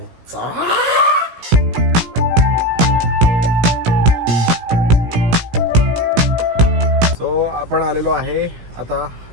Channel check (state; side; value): late; left; 17 ms